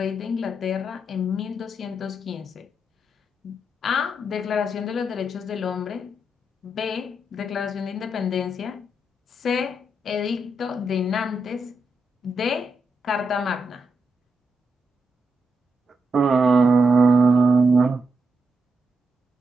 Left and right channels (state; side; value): normal; both; correlation 0.83